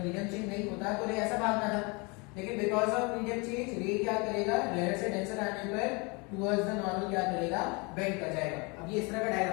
मीडियम चेंज नहीं होता तो रे ऐसा भागता था, लेकिन बिकॉज ऑफ मीडियम चेंज रे क्या करेगा, रेयर से डेंसर आने पर टुवर्ड्स द नॉर्मल क्या करेगा, बेंड कर जाएगा। अब ये इस तरह का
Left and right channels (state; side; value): quieter; right; 29.3 dB